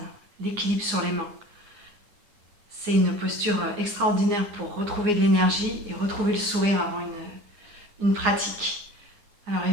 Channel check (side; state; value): left; late; 9.7 ms